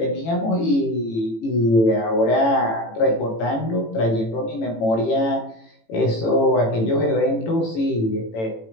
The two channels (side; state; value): right; late; 18 ms